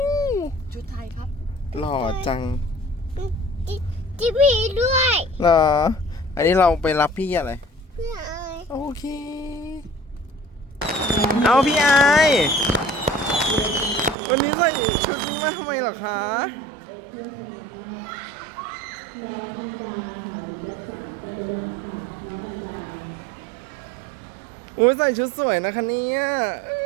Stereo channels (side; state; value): left; drops out; at 14.2 s